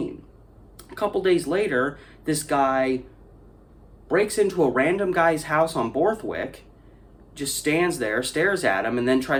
A couple days later, this guy breaks into a random guy's house on Borthwick, just stands there, stares at him, and then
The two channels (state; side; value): identical; both; correlation 1.00